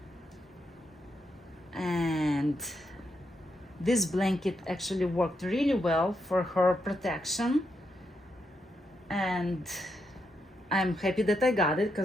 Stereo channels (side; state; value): both; normal; correlation 0.81